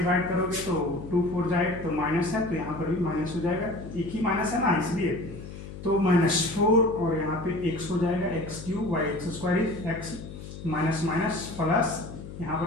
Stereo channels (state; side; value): noise; left; hum, 12 dB below the sound